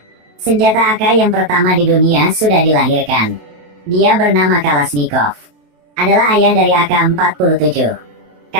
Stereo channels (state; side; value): late; left; 27 ms